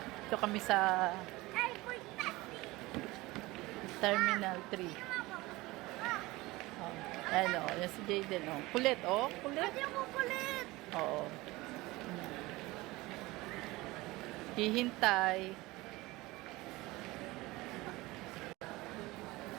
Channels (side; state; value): left; quieter; 20.6 dB